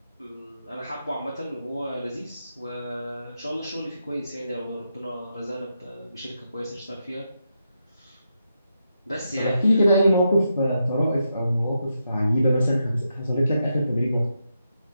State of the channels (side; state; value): both; inverted; correlation -0.84